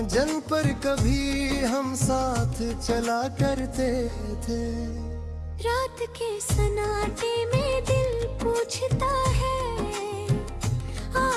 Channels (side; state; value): both; identical; correlation 1.00